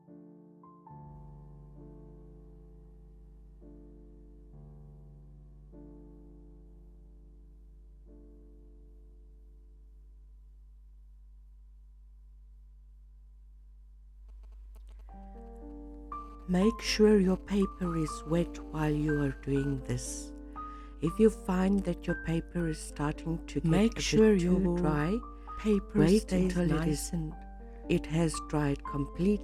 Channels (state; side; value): identical; both; correlation 1.00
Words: Make sure your paper is wet while you are doing this. If you find that your paper is starting to get a bit too dry, wait until it has dried